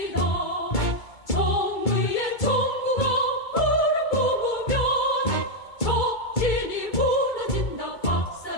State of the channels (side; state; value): right; late; 2.3 ms